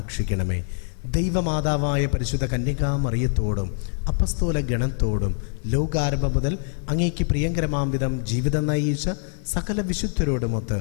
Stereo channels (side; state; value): right; silent; digital silence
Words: ദൈവമാതാവായ പരിശുദ്ധ കന്യകാമറിയത്തോടും അപ്പസ്തോല ഗണത്തോടും ലോകാരംഭം മുതൽ അങ്ങേക്ക് പ്രിയങ്കരമാം വിധം ജീവിതം നയിച്ച സകല വിശുദ്ധരോടുമൊത്ത്